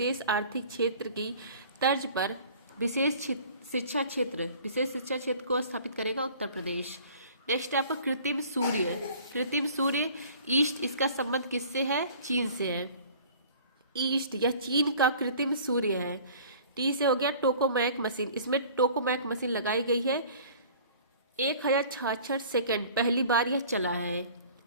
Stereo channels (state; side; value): inverted; both; correlation -0.48